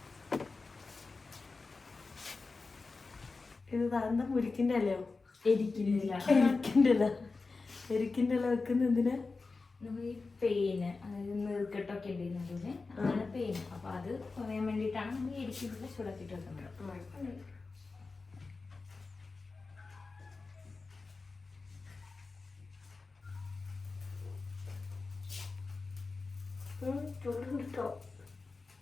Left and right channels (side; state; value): right; quieter; 4.0 dB